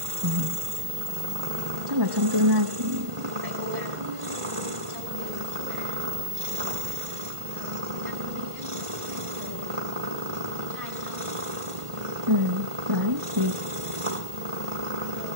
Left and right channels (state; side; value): late; left; 1.5 ms